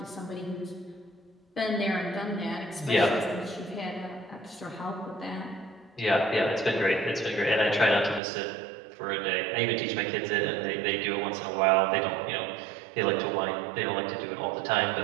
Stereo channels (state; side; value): drops out; left; at 8.2 s